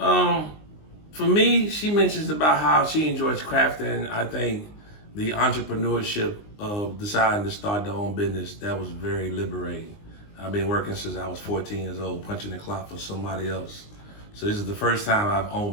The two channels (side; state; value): right; late; 19 ms